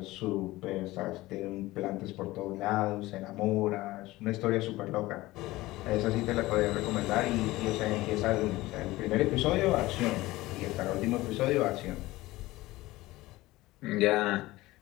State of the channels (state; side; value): quieter; right; 18.6 dB